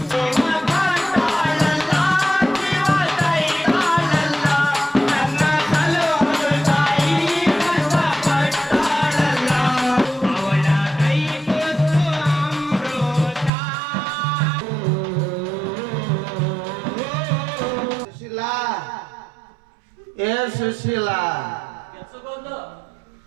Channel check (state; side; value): drops out; left; at 13.5 s